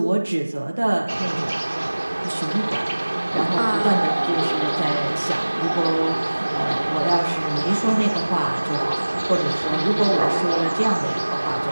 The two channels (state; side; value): inverted; both; correlation -1.00